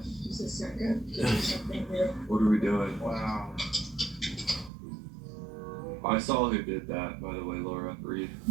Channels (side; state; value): left; drops out; at 4.7 s